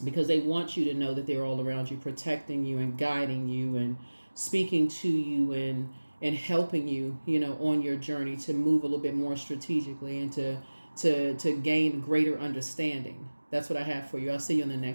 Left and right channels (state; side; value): inverted; both; correlation -1.00